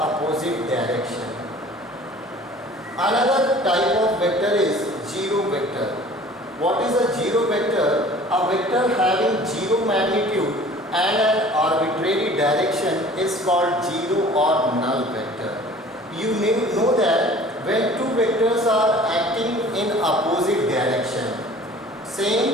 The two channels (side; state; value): both; normal; correlation 0.47